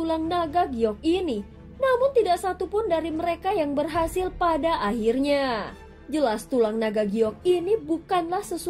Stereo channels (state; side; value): identical; both; correlation 1.00